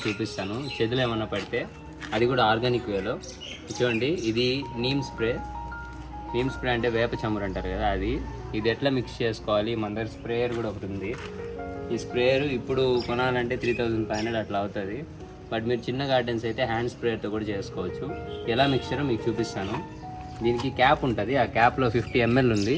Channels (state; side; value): identical; both; correlation 1.00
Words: చూపిస్తాను. చేతులు ఏమన్నా పడితే అది కూడా ఆర్గానిక్ వేలో. చూడండి, ఇది నీమ్ స్ప్రే అంటే వేప చమురు అంటారు కదా, ఇది ఎట్లా మిక్స్ చేసుకోవాలి. మన దగ్గర స్ప్రేయర్ కూడా ఒకటి ఉంది. ఈ స్ప్రేయర్ ఇప్పుడు కొనాలంటే 3500 అట్లా అవుతుంది. బట్ మీరు చిన్న గార్డెన్స్ అయితే హ్యాండ్ స్ప్రేయర్తో కూడా చేసుకోవచ్చు. ఎలా మిక్చరో మీకు చూపిస్తాను. దీనికి క్యాప్ ఉంటుంది. ఆ క్యాప్లో 50 ml ఉంది.